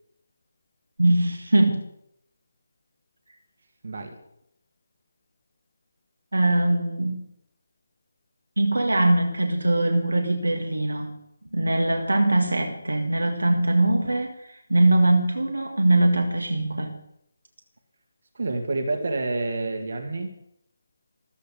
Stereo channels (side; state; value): both; inverted; correlation -0.96